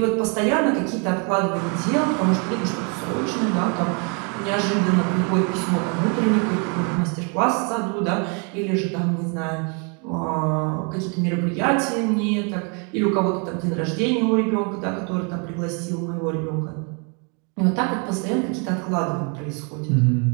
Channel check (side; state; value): left; quieter; 36.1 dB